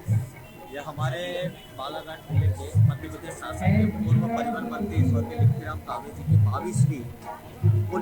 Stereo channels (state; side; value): identical; both; correlation 1.00